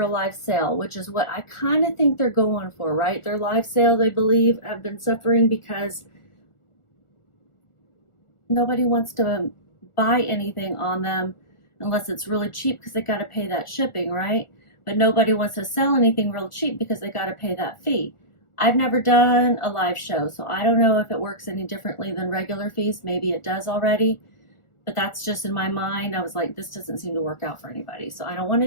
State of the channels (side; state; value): right; late; 1.4 ms